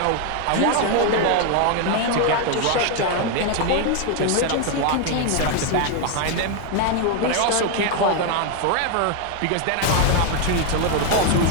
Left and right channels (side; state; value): both; different; correlation 0.01